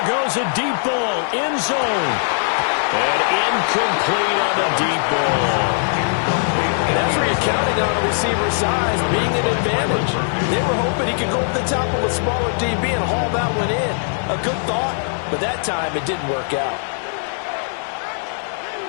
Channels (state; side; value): silent; right; digital silence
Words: goes a deep ball. End zone. And incomplete on the deep ball. That's where you're counting on a receiver's size being an advantage. They were hoping he could go over the top of a smaller DB and haul that one in. A good thought, but that time it didn't work out.